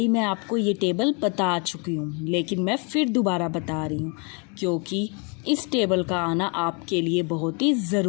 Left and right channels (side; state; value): right; quieter; 34.7 dB